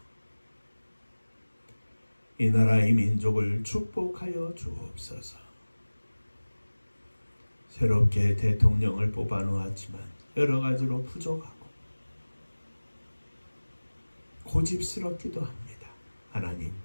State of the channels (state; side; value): inverted; both; correlation -1.00